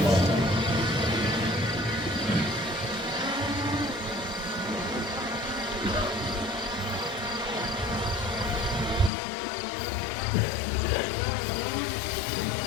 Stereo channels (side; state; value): right; drops out; at 9.1 s